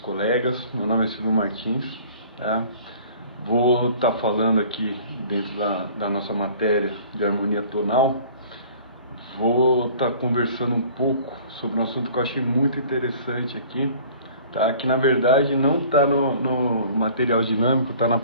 meu nome é Silvio Martins, tá? Vou estar falando aqui dentro da nossa matéria de harmonia tonal. Vou estar conversando um pouco sobre um assunto que eu achei muito interessante aqui, tá? Que na verdade não está no material dinâmico, está na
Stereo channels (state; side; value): inverted; both; correlation -0.49